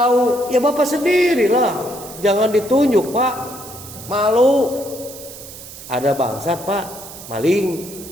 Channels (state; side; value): noise; right; hiss, 15 dB below the sound